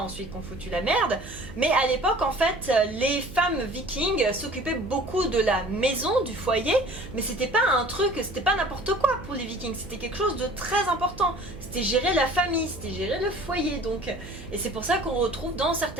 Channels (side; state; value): right; noise; hum, 15 dB below the sound